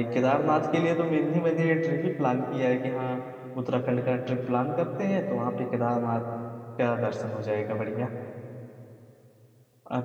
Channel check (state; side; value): identical; both; correlation 1.00